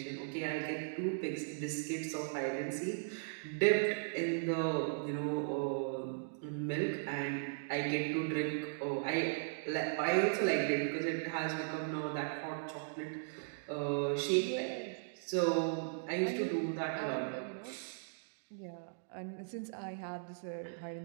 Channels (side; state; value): left; silent; digital silence